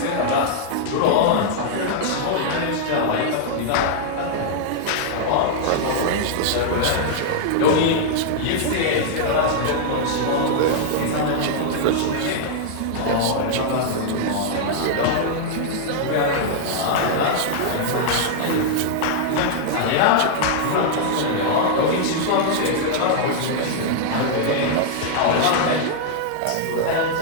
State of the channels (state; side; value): different; both; correlation -0.01